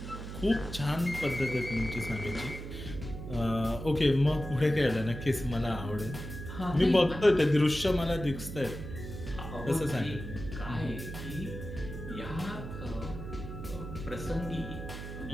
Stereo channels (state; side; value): noise; right; hum, 9 dB below the sound